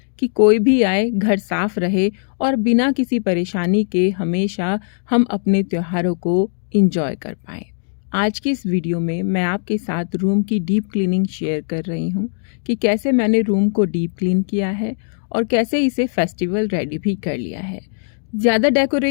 कि कोई भी आए घर साफ रहे और बिना किसी परेशानी के हमेशा हम अपने त्योहारों को एंजॉय कर पाएं। आज की इस वीडियो में मैं आपके साथ रूम की डीप क्लीनिंग शेयर कर रही हूँ कि कैसे मैंने रूम को डीप क्लीन किया है और कैसे इसे फेस्टिवल रेडी भी कर लिया है। ज़्यादा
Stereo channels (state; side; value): silent; right; digital silence